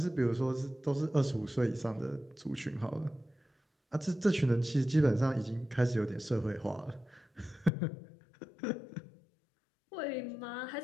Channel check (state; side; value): drops out; right; at 7.7 s